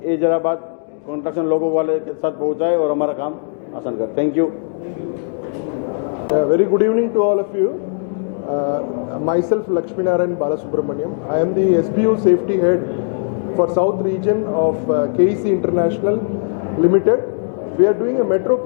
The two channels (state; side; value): silent; right; digital silence